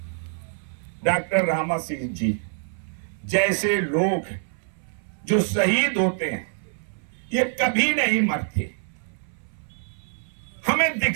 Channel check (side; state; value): left; silent; 59 dB below the other